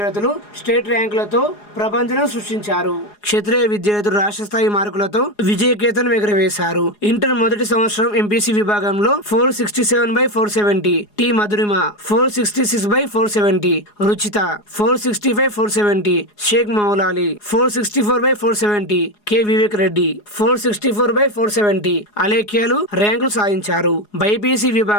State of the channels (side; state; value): right; late; 4.8 ms